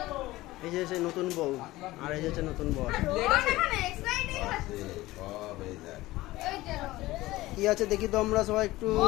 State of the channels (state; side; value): quieter; right; 18.1 dB